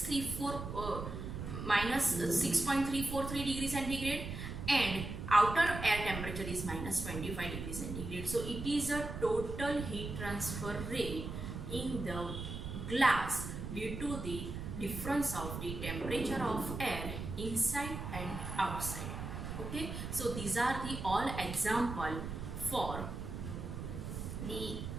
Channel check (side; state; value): right; noise; rumble, 6 dB below the sound